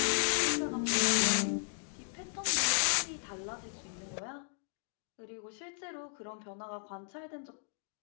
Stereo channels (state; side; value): silent; right; digital silence